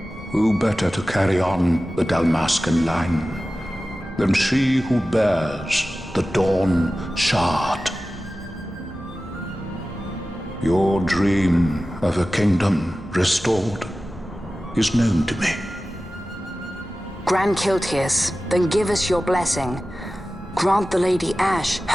Who better to carry on the Dalmascan line than she who bears the Dawn Shard? Your dream of a kingdom restored is known to me. Grand Kiltias, then give us your blessing. Grant the Lady Ash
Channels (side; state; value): both; normal; correlation 0.95